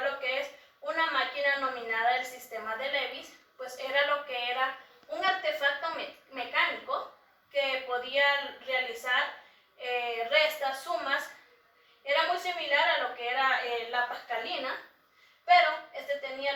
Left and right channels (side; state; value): both; identical; correlation 1.00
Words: que es una máquina nominada el sistema de Leibniz. Pues era lo que era un artefacto mecánico que podía realizar restas, sumas. Era muy similar a lo que era la Pascalina, pero este tenía